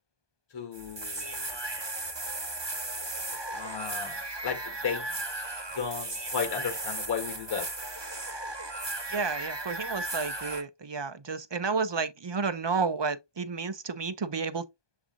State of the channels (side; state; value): left; late; 1.2 ms